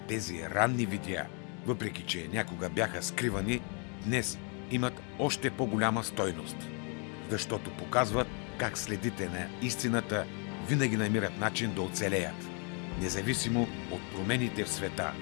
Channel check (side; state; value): right; quieter; 37.1 dB